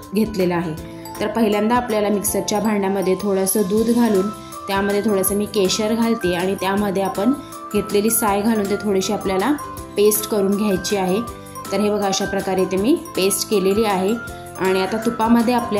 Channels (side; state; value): both; identical; correlation 1.00